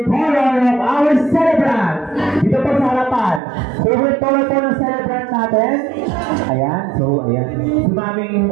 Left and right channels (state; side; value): drops out; left; at 3.4 s